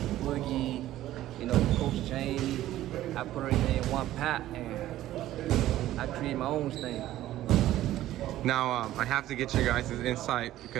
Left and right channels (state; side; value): quieter; left; 14.1 dB